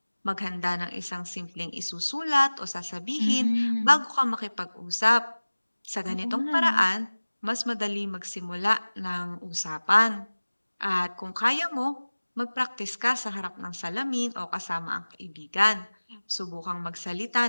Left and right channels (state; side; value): inverted; both; correlation -1.00